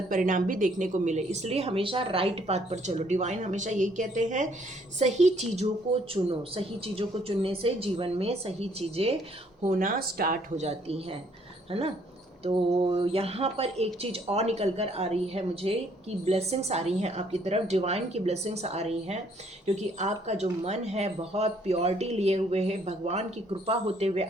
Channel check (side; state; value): both; normal; correlation 0.65